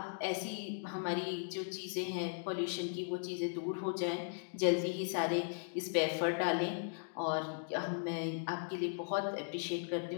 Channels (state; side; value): silent; right; digital silence